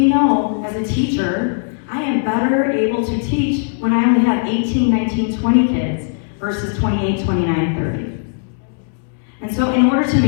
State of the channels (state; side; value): silent; right; 67 dB below the other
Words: know as a teacher, I am better able to teach when I only have 18, 19, 20 kids versus 28, 29, 30. And so in order to